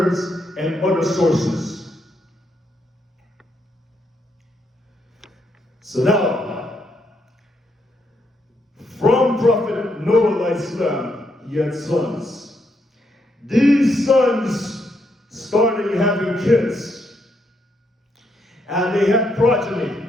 and other sources. So now, from Prophet Prophet Noah Alahisalam, he had sons. These sons started having kids, and they had progeny,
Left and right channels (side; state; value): both; normal; correlation 0.77